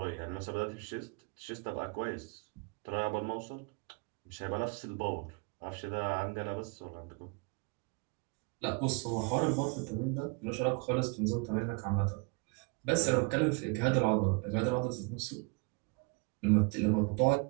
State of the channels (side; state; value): left; quieter; 31.7 dB